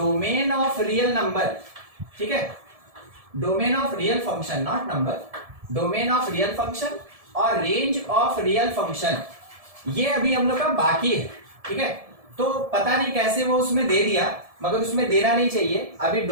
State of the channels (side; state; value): left; late; 1.7 ms